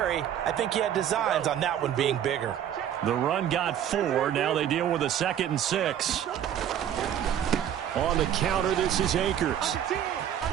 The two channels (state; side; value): quieter; left; 10.1 dB